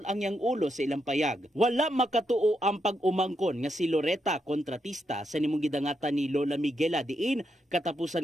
ang yang ulo sa ilang payag. Wala makatuo ang pag-umangkon nga si Loretta, kontratista sa nimong gidangatan ni Lola Miguela diin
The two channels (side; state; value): both; normal; correlation 0.81